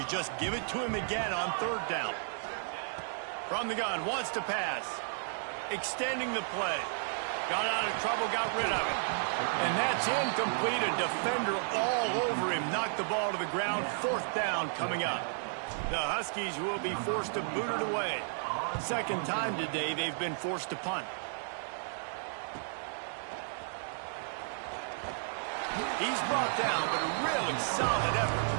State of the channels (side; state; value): left; silent; digital silence